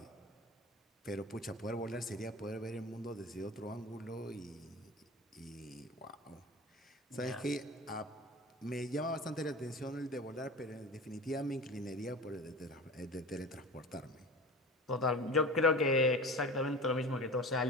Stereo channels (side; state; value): both; normal; correlation 0.34